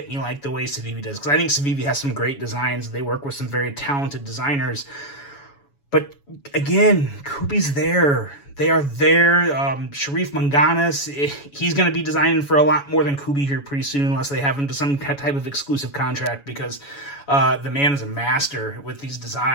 me like the way Civivi does, because I think Civivi has some great designs. They work with some very talented designers. But again, Kubey's there. They are there. Sharif Manganis, he's going to be designing for a lot more than Kubey here pretty soon, unless they have him to some type of exclusive contract, because the man is a master with these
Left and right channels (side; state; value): right; late; 7.1 ms